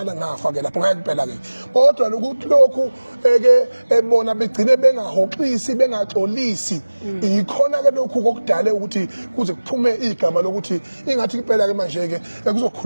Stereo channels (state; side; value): inverted; both; correlation -1.00